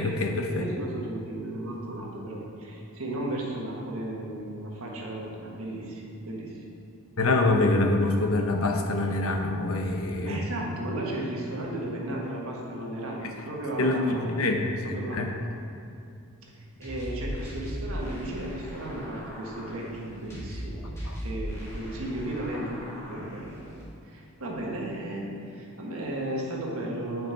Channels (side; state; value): both; normal; correlation 0.42